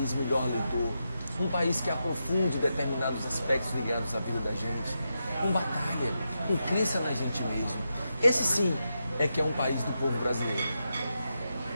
melhor leitor, um país que aprofunde determinados aspectos ligados à vida da gente, com batalha, com crença na gente mesmo. Esse sim é que é um país do povo brasileiro.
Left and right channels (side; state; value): both; inverted; correlation -0.87